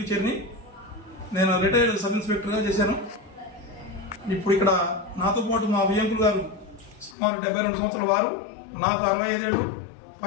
చేరినాయి. నేను రిటైర్డ్ సబ్ ఇన్స్పెక్టర్గా చేశాను. ఇప్పుడు ఇక్కడ నాతో పాటు మా వియంకులు గారు సుమారు 72 సంవత్సరాల వారు, నాకు 65 ఏళ్ళు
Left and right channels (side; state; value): right; drops out; at 7.2 s